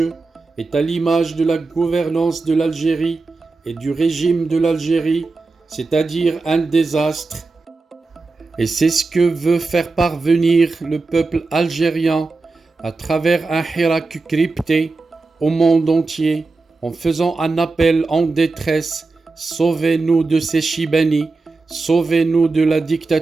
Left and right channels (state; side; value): quieter; left; 3.7 dB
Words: est à l'image de la gouvernance de l'Algérie et du régime de l'Algérie, c'est-à-dire un désastre. Et c'est ce que veut faire parvenir le peuple algérien à travers un hirak crypté au monde entier, en faisant un appel en détresse: sauvez-nous de ces Chibani, sauvez-nous de la